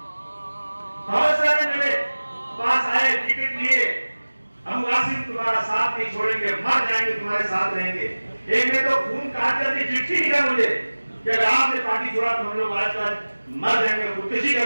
बहुत सारे मेरे पास आए, टिकट लिए, हम वासिम तुम्हारा साथ नहीं छोड़ेंगे, मर जाएंगे तुम्हारे साथ रहेंगे। एक ने तो खून काट करके चिट्ठी लिखा मुझे कि अगर आपने पार्टी छोड़ा तो हम लोग आज मर जाएंगे, खुदकुशी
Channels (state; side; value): inverted; both; correlation -1.00